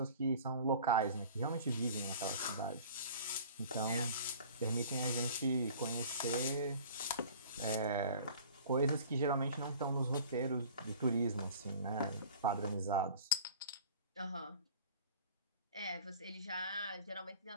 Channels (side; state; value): both; inverted; correlation -0.45